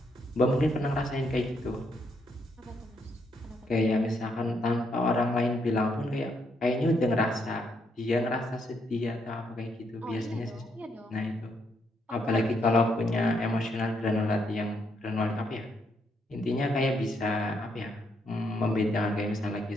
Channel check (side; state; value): both; normal; correlation 0.76